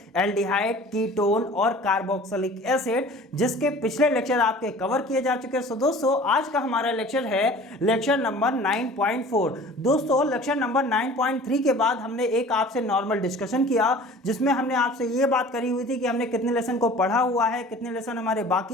एल्डिहाइड, कीटोन और कार्बोक्सिलिक एसिड, जिसके पिछले लेक्चर आपके कवर किए जा चुके हैं। सो दोस्तों, आज का हमारा लेक्चर है लेक्चर नंबर 9.4। दोस्तों, लेक्चर नंबर 9.3 के बाद हमने एक आपसे नॉर्मल डिस्कशन किया, जिसमें हमने आपसे ये बात करी हुई थी कि हमने कितने लेसन को पढ़ा हुआ है, कितने लेसन हमारे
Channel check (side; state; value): both; normal; correlation 0.45